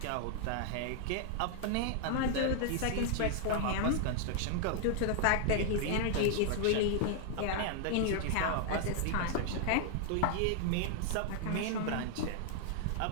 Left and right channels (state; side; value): different; both; correlation 0.00